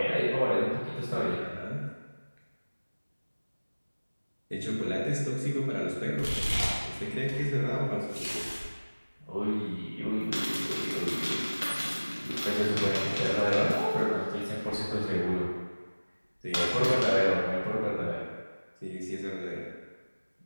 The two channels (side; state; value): both; inverted; correlation -1.00